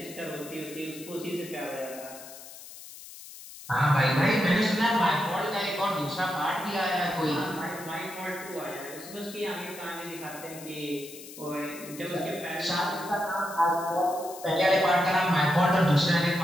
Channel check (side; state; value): left; noise; hiss, 15 dB below the sound